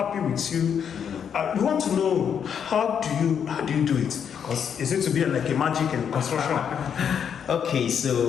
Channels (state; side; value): quieter; right; 7.8 dB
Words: with you. We want to know how do you do it? Because is it to be like a magic in construction? Okay,